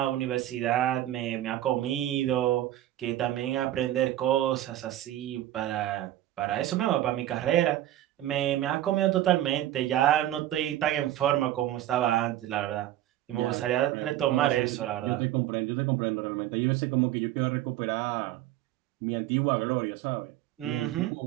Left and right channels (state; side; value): quieter; left; 13.6 dB